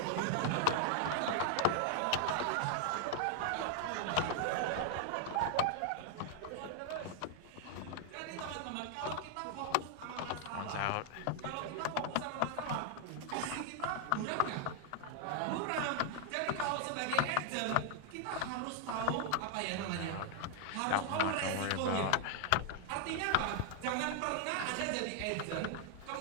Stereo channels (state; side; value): different; both; correlation 0.00